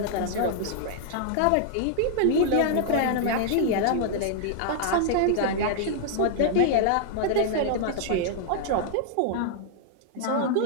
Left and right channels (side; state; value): both; different; correlation -0.01